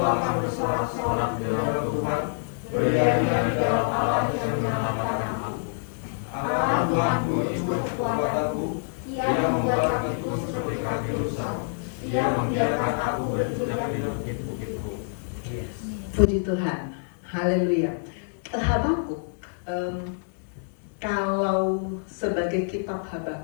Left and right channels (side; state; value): right; silent; 61 dB below the other